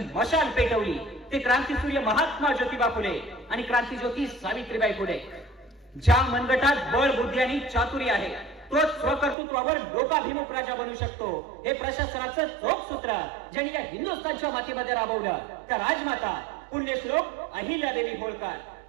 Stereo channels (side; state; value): left; drops out; at 9.3 s